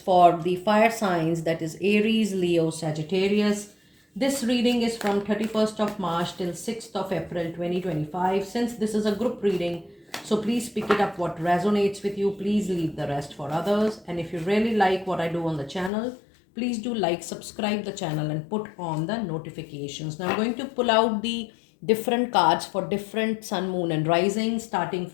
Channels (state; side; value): drops out; right; at 15.9 s